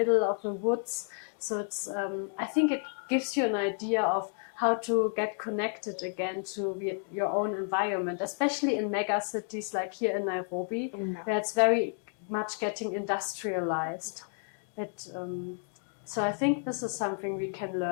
of the woods. So it's I think it gives you an idea of how to get connected again to your own environment, especially in mega cities like here in Nairobi, where it's very much getting industrialized. So I think this is something we can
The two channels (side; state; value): right; silent; 57 dB below the other